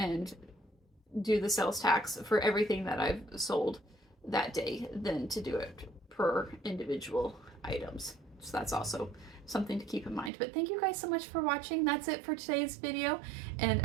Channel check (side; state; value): left; drops out; at 10.3 s